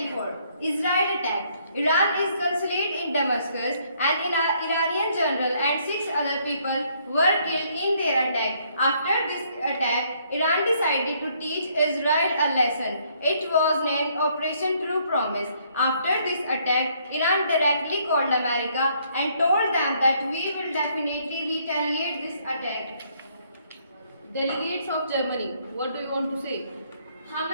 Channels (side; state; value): both; inverted; correlation -0.68